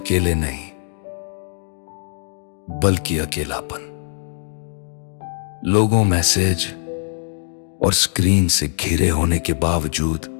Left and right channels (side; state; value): right; silent; digital silence